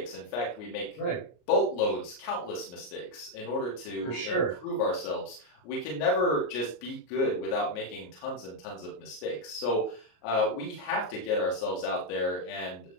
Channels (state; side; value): late; right; 33 ms